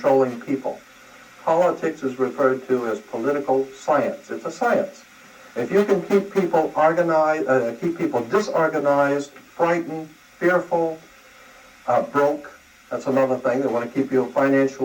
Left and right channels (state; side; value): identical; both; correlation 1.00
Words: people. Politics is referred to as political science. It's a science. If you can keep people organized, keep people disorganized, frightened, fearful, broke, that's another thing. They want to keep you